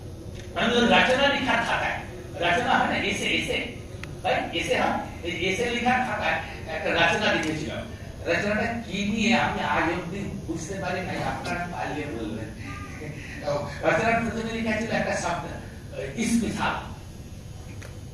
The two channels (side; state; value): both; identical; correlation 1.00